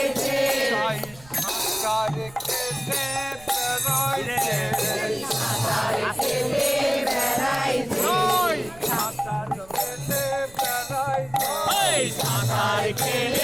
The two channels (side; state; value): right; noise; rumble, 22 dB below the sound